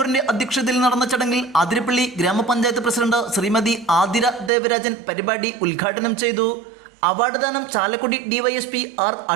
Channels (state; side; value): drops out; left; at 4.5 s